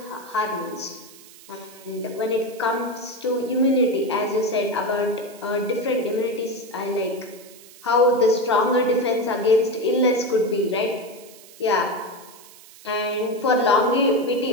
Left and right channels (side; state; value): right; noise; hiss, 21 dB below the sound